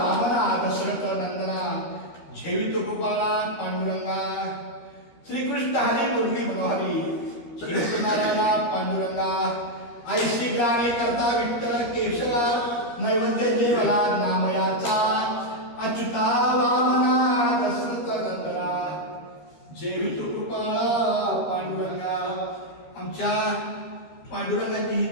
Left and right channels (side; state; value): right; late; 13 ms